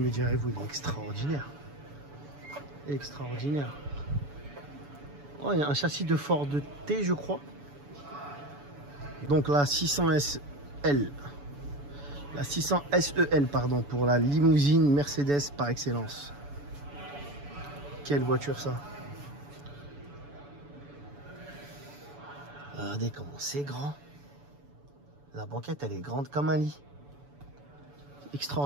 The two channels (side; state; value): left; late; 7.0 ms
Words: direz-vous, il est extraordinaire. Extraordinaire. Oh, il y a un châssis de Ford T je crois. Donc la 600 SL. La 600 SEL pardon, pour la limousine Mercedes par excellence. Quelle voiture ça. Regardez comment c'est grand. La banquette elle est grande comme un lit.